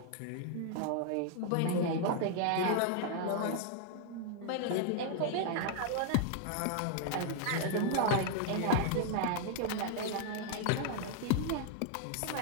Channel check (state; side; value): different; both; correlation 0.00